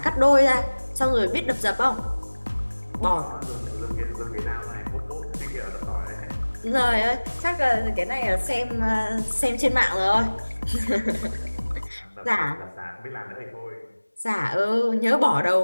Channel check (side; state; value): both; inverted; correlation -1.00